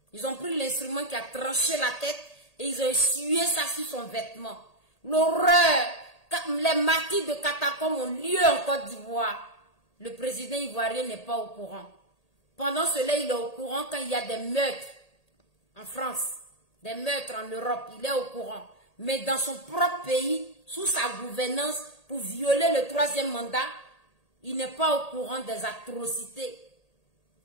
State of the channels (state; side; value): late; right; 1.8 ms